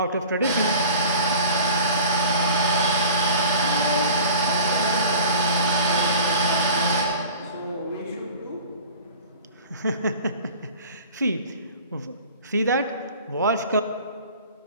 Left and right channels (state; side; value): inverted; both; correlation -0.42